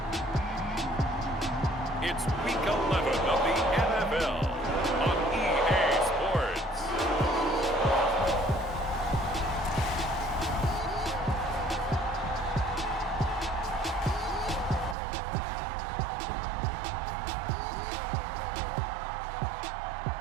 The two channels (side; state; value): left; drops out; at 15.0 s